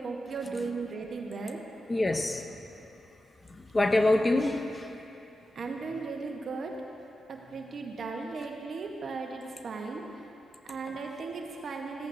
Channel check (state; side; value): normal; both; correlation 0.91